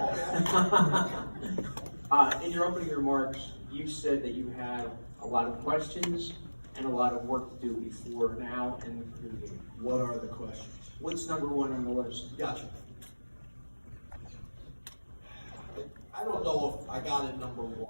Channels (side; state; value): both; inverted; correlation -1.00